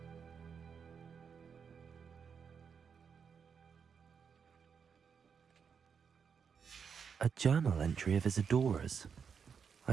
A journal entry of Isadora's.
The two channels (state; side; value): quieter; left; 6.5 dB